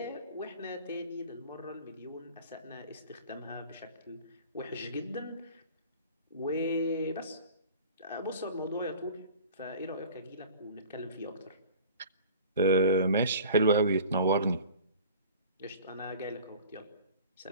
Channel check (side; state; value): both; inverted; correlation -0.43